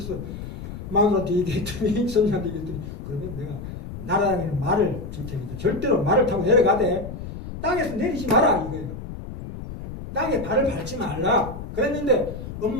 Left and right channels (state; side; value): noise; left; rumble, 10 dB below the sound